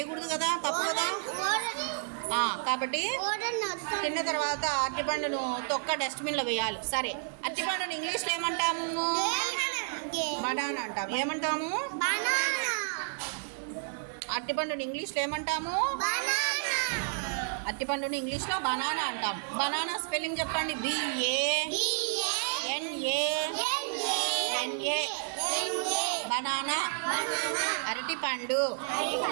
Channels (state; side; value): silent; left; digital silence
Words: కదా, తప్పు కదా. కాబట్టి తిన్న తర్వాత అరటిపండును తొక్క డస్ట్బిన్లో వేయాలి. సరే, అరటిపండును ఇంగ్లీష్లో ఏమంటాము? బనానా అంటాము. ఏమంటాము? అరటిపండుని ఇంగ్లీష్లో ఏమంటాము? అరటిపండుని ఇంగ్లీష్లో బనానా అంటాం. బనానా స్పెల్లింగ్ చెప్పండి. BANANA బనానా, అరటిపండు.